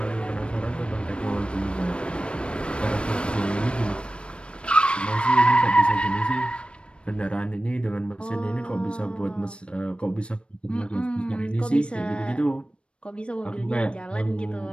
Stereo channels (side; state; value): right; late; 0.058 ms